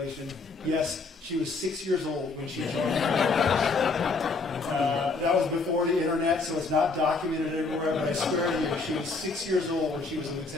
Yes, she was 6 years old when she joined. That was before the internet, so it's not documented everywhere, but I swear to you, she was 6 years old when she was a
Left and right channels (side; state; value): right; quieter; 4.0 dB